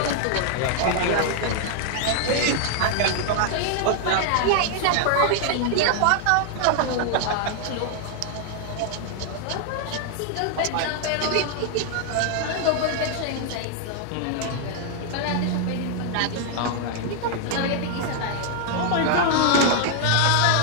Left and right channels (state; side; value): different; both; correlation 0.00